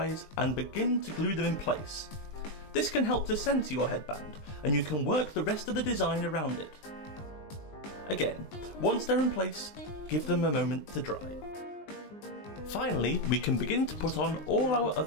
and begin to glue them in place. This can help to centre your headband, and you can work the rest of the design around it. Again, once they're in place, give them a moment to dry. Finally, we can begin to put on all our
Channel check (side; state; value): right; late; 20 ms